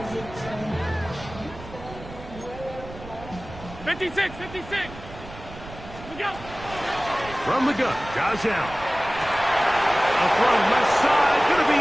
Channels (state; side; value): noise; right; rumble, 15 dB below the sound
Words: 56, 56. We go. From the gun, Josh Allen. A throw left side, going to be